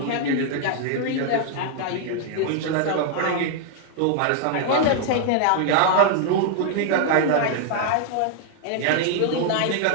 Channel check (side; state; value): both; different; correlation 0.00